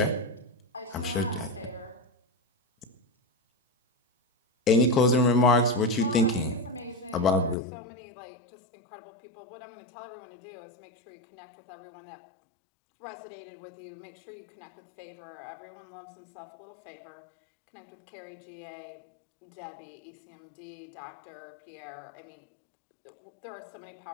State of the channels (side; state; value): right; drops out; at 7.6 s